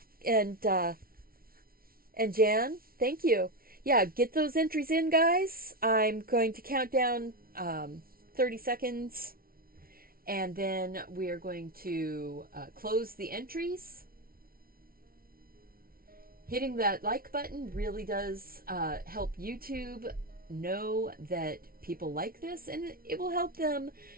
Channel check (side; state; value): left; late; 0.43 ms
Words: And Jan, thank you. Yeah, get those entries in, guys. I'm going to count down 30 seconds, and then we are going to close the entries. Hitting that like button really does help YouTube know that people like this, and it will help them.